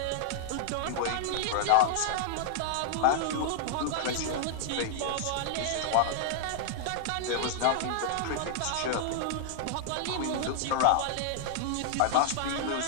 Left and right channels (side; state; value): both; different; correlation -0.01